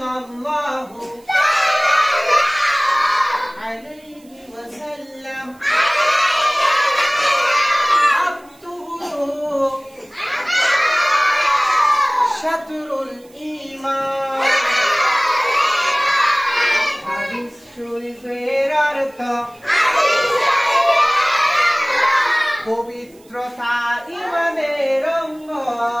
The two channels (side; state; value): right; noise; hiss, 29 dB below the sound